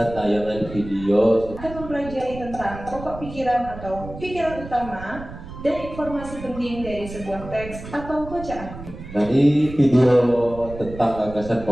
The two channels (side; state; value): right; noise; rumble, 13 dB below the sound